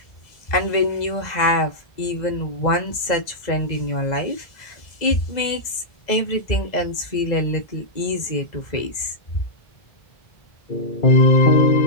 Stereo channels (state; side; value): late; right; 2.0 ms